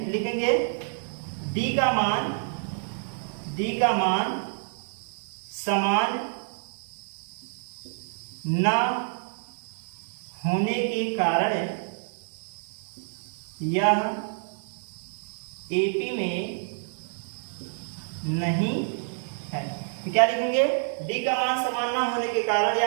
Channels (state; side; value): silent; left; digital silence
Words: लिखेंगे डी का मान समान न होने के कारण यह एपी में नहीं है। तो क्या लिखेंगे, डी का मान समान ना होने के कारण